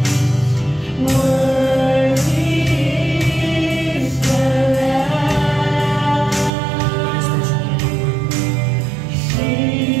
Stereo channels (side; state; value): left; drops out; at 6.5 s